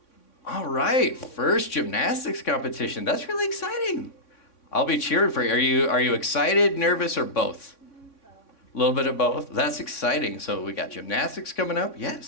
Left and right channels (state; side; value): late; right; 3.6 ms